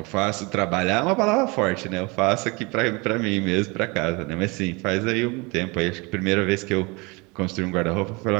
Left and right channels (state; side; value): quieter; left; 27.2 dB